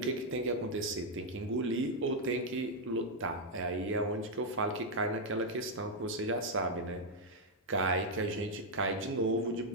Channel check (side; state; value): both; normal; correlation -0.01